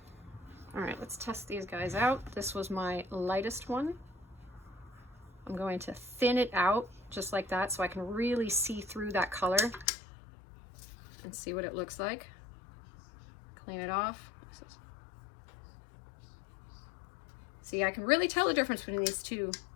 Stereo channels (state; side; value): drops out; right; at 9.9 s